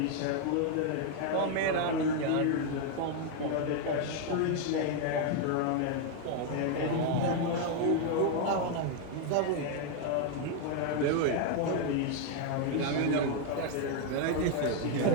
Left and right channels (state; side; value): different; both; correlation 0.00